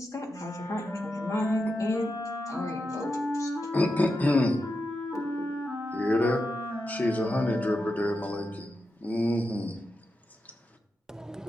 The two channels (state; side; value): normal; both; correlation 0.88